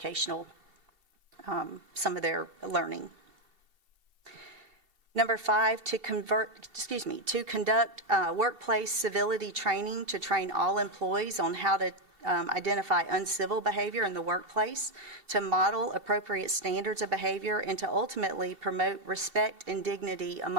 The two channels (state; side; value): late; left; 2.7 ms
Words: some of their learning. Number 5, to conduct workplace civility training to train all employees on how to identify uncivil behavior in the workplace, to model appropriate standards of behavior, and to ultimately promote respect and dignity